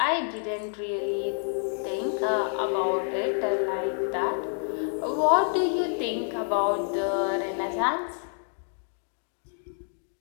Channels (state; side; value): silent; right; 59 dB below the other